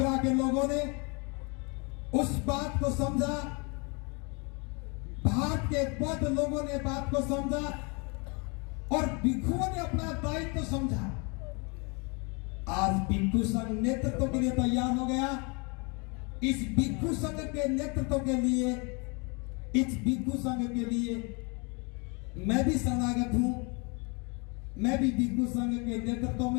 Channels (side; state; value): right; quieter; 32.0 dB